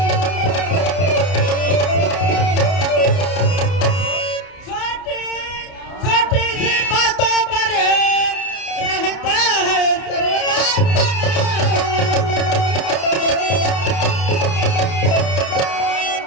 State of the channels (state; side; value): late; right; 31 ms